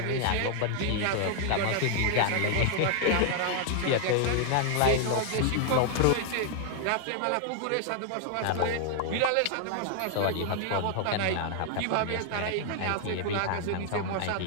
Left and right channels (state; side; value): different; both; correlation 0.00